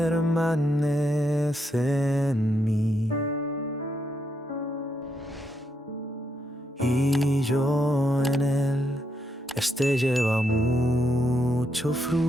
en mí y yo en él. Este lleva mucho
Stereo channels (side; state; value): both; normal; correlation 0.79